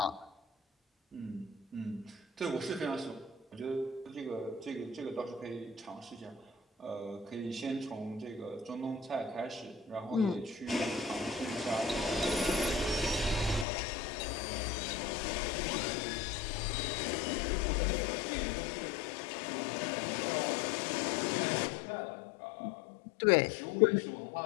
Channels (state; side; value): drops out; right; at 13.7 s